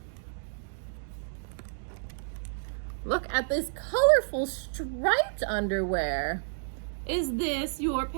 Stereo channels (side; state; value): left; silent; digital silence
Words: Look at this colorful striped underwear. Is this your